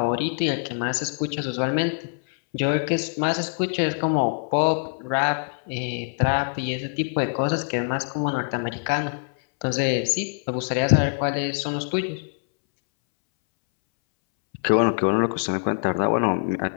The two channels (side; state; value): right; silent; 62 dB below the other